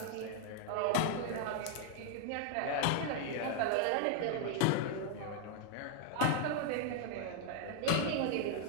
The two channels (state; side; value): different; both; correlation 0.00